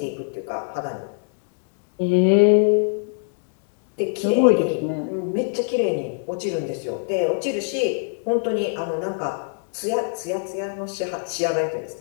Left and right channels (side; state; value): right; silent; digital silence